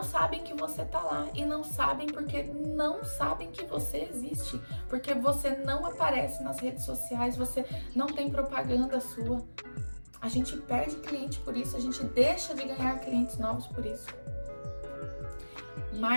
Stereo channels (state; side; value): inverted; both; correlation -1.00